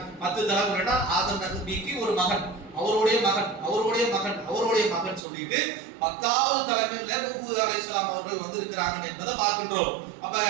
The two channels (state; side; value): drops out; left; at 5.2 s